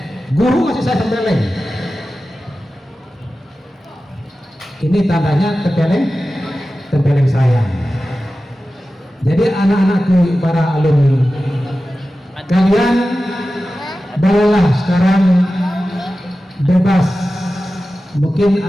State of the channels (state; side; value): normal; both; correlation 0.94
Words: guru masih saya tempeleng. Ini tandanya tempeleng sayang. Jadi anak-anakku para alumni, kalian bolehlah sekarang bebas. Mungkin